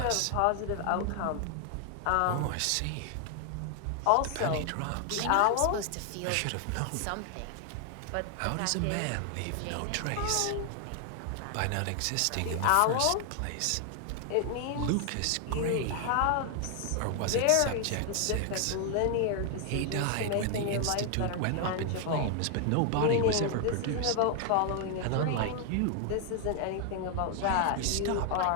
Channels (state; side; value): different; both; correlation 0.00